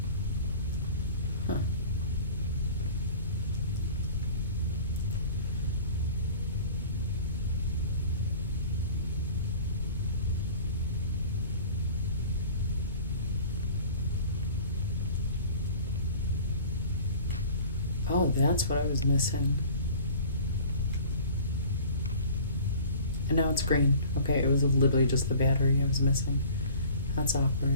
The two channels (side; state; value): both; inverted; correlation -0.45